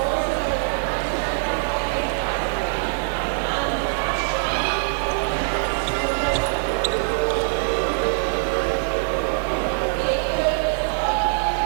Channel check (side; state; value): left; silent; digital silence